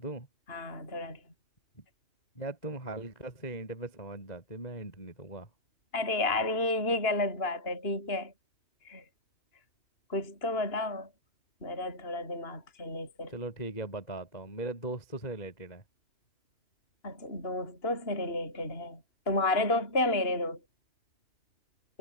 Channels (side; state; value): right; late; 2.9 ms